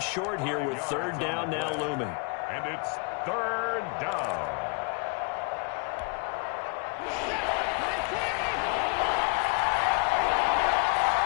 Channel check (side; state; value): right; quieter; 32.1 dB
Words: short here with 3rd down now looming. And it's 3rd down.